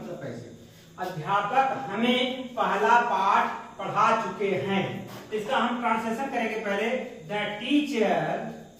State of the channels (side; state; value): both; identical; correlation 1.00